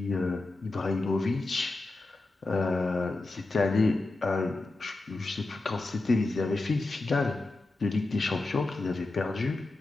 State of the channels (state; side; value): quieter; right; 3.1 dB